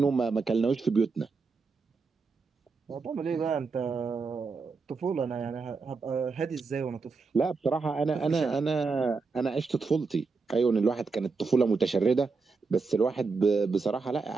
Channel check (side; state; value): left; quieter; 4.4 dB